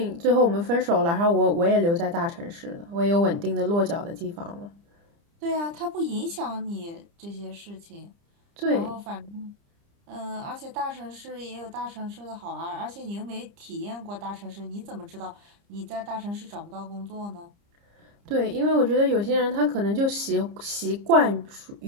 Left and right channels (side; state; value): left; late; 30 ms